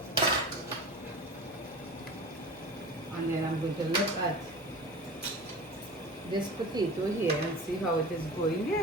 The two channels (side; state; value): both; normal; correlation 0.35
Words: And then I'm going to look at this potato here and see how it is going